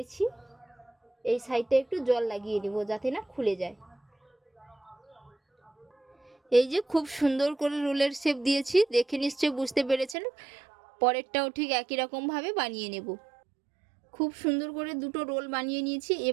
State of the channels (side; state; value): left; drops out; at 10.2 s